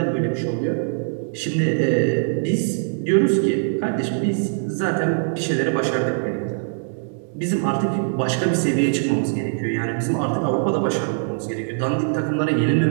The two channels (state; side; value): silent; left; 63 dB below the other